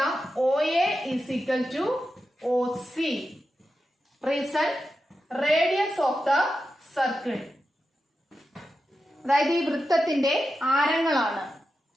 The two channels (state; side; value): normal; both; correlation 0.90